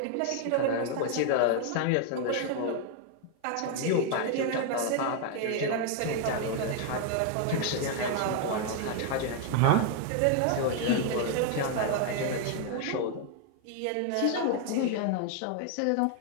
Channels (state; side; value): different; both; correlation 0.00